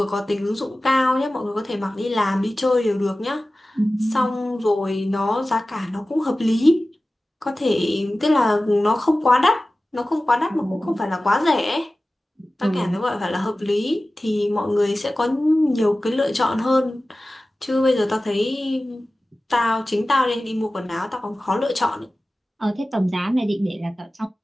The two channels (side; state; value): both; normal; correlation 0.96